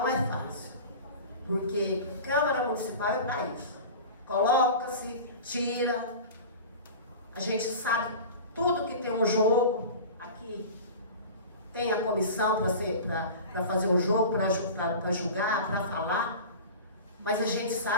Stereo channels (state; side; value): inverted; both; correlation -0.34